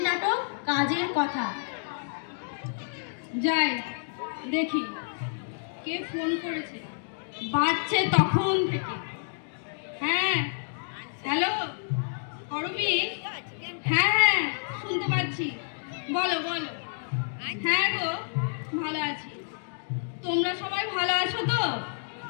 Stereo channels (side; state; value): right; silent; digital silence